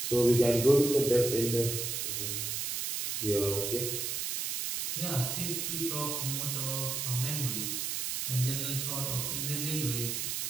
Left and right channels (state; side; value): noise; right; hiss, 2 dB below the sound